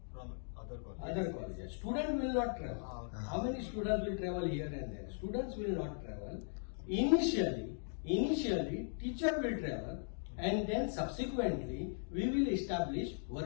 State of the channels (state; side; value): silent; right; digital silence